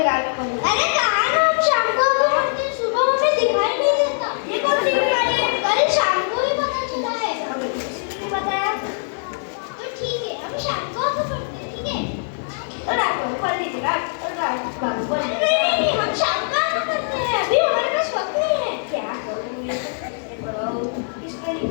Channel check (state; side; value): silent; right; digital silence